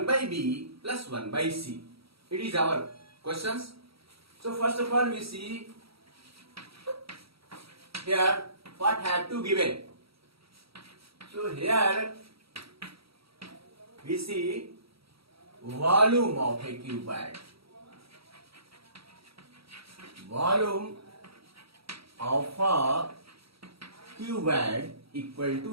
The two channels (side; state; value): left; late; 0.76 ms